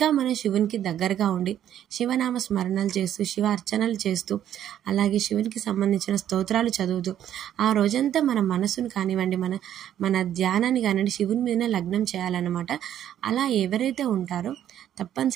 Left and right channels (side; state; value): left; quieter; 10.8 dB